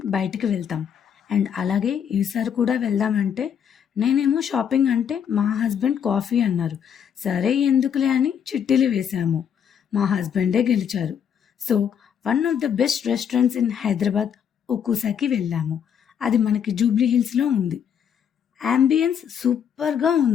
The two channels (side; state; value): right; quieter; 8.2 dB